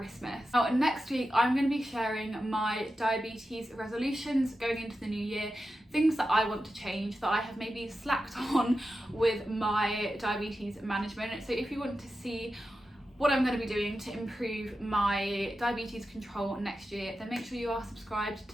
Now next week I'm going to be sharing my diabetes resolutions going into the new year, things that I want to change that I have maybe slacked on with my diabetes management. So if you want to see what I'm going to be doing to improve my diabetes control next year, then make sure you are subscribed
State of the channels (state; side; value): normal; both; correlation 0.91